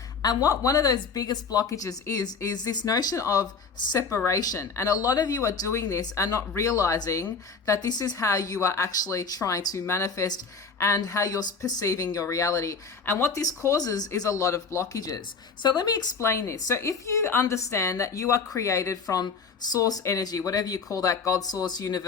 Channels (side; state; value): right; quieter; 5.1 dB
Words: And what one of those biggest blockages is this notion of separation. And a lot of you are doing this and not realizing that this is how you are actually trying to manifest and how you're perceiving your reality. And what this causes is a lot of blockages. So let me explain this. So if you understand that you are created from source energy, whatever you call that, God, source,